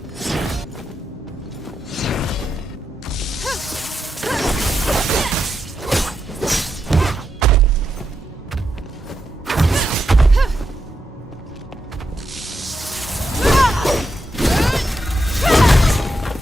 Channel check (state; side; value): normal; both; correlation 0.84